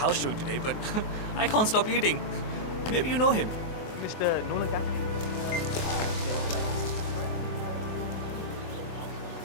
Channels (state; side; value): late; right; 24 ms